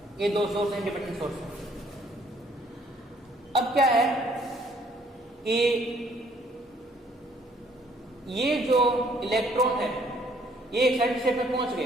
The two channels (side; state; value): both; normal; correlation 0.63